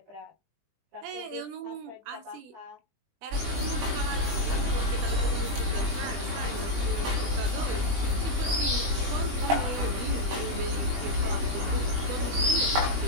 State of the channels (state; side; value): late; left; 20 ms